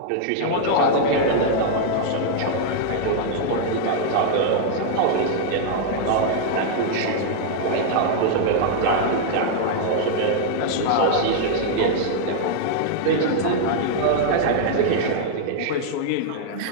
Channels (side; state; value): both; different; correlation -0.01